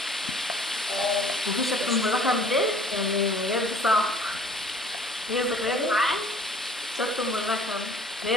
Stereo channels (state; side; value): normal; both; correlation 0.51